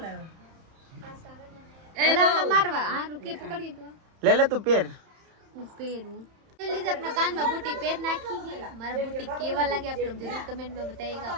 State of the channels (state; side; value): late; left; 31 ms